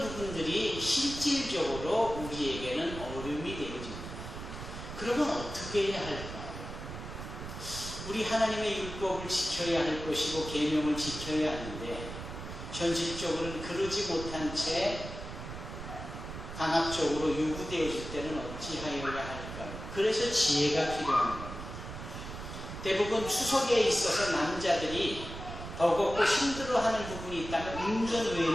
실질적으로 우리에게는 어려움이 되어집니다. 그러면 어떻게 해야 할까요? 우리 하나님의 율법을 지켜야 할 것이고 계명을 지켜야 하는데 현실적으로는 그러지 못한 채 강압적으로 요구되어질 때는 어찌하여야 할까요? 그래서 지혜가 필요한 겁니다. 대부분 추석에 있어서 남자들이 버겁고 힘들어하는 부분이 있다면 운전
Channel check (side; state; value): right; noise; rumble, 9 dB below the sound